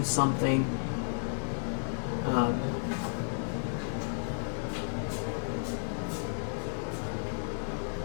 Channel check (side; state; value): right; silent; digital silence